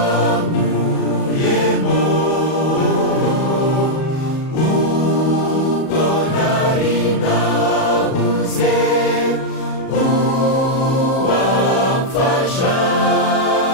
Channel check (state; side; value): late; right; 37 ms